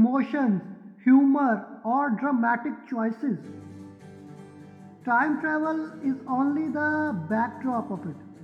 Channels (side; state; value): both; identical; correlation 1.00